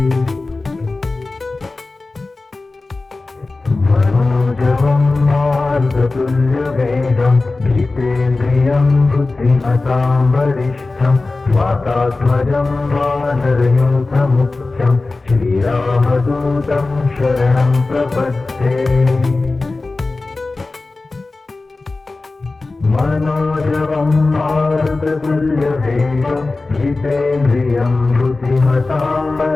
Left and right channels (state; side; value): quieter; right; 3.5 dB